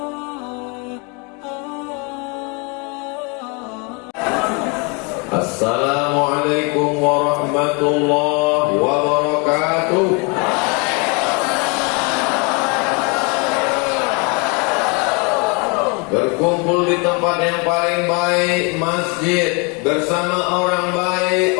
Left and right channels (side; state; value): right; quieter; 31.9 dB